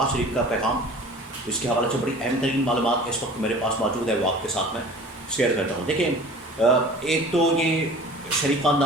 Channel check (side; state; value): both; normal; correlation 0.43